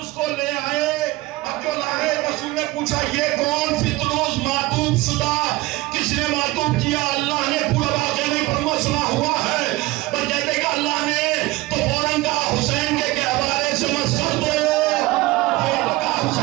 کو لے آئے. اب جو لائے رسول نے پوچھا یہ کون فطروس معطوب شدہ کس نے معطوب کیا؟ اللہ نے پورا واقعہ نہیں فرما سنا ہوا ہے. پر کہتے کہ اللہ نے تو فوراً کہا حسین کے گہوارے سے مس کر دو.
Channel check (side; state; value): left; quieter; 19.5 dB